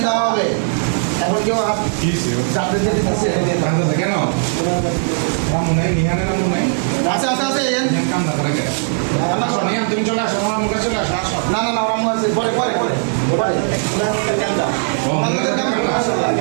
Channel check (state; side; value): silent; left; digital silence